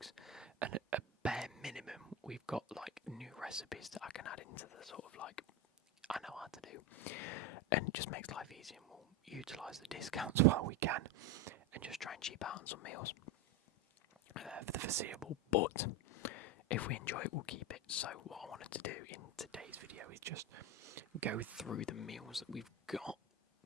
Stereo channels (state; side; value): normal; both; correlation 0.15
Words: And at a bare minimum, we've got like new recipes that I can add into the sort of like I know how to do, and it just makes life easier. And we'll utilise the discounts while we can, and just try and cheap out on some meals for the foreseeable. But if we enjoy it, we'll keep it. So what I wanted to do in today's video is just go through the meals that we've got.